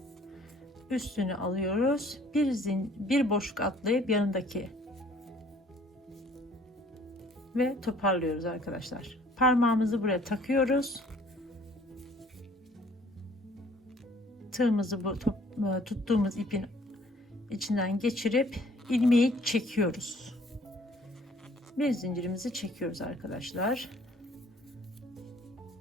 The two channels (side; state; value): both; normal; correlation 0.57